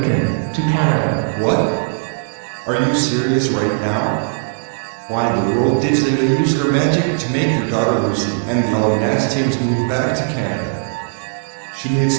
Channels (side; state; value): left; silent; 57 dB below the other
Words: to Canada. What? Are you serious right now? Why in the world did Zeta use her magic to make her daughter Lucy and the Alanastians move back to Canada? She